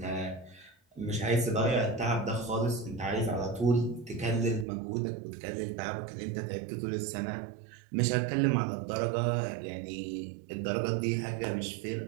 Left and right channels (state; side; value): drops out; left; at 4.7 s